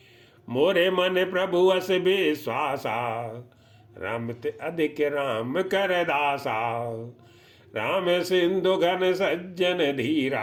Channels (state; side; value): identical; both; correlation 1.00